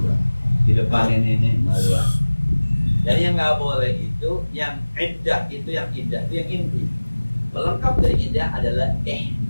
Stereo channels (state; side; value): inverted; both; correlation -1.00